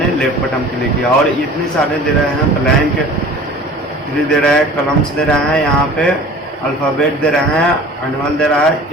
लेफ्ट बटन क्लिक किया और इतने सारे दे रहे हैं, ब्लैंक दे रहे हैं, कलम्स दे रहे हैं, यहाँ पे अल्फ़ाबेट दे रहे हैं, एनुअल दे रहा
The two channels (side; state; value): both; normal; correlation 0.43